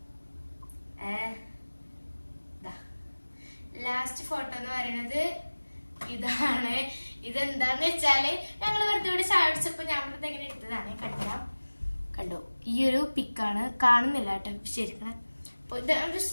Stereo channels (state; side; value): inverted; both; correlation -1.00